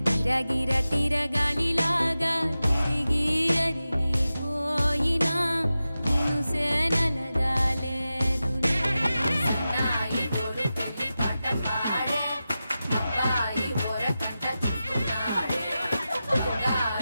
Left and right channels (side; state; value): both; inverted; correlation -0.93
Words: గిర గిర తిరగాలిలాగా తిరిగి అరిగిపోయినా దినుసే నలగాలేదులే.